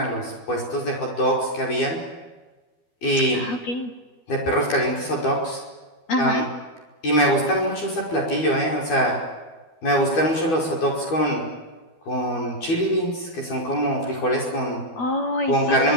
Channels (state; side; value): late; right; 12 ms